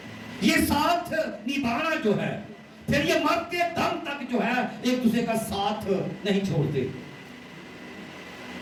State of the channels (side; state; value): both; identical; correlation 1.00